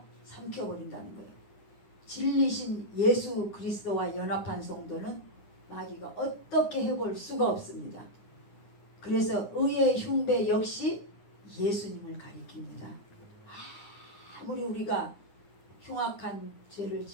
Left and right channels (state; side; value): late; right; 9.8 ms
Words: 삼켜버린다는 거예요. 진리신 예수 그리스도와 연합한 성도는 마귀가 어떻게 해볼 수가 없습니다. 그래서 의의 흉배 역시 예수님을 가리킵니다. 아무리 우리가 흉악한 죄를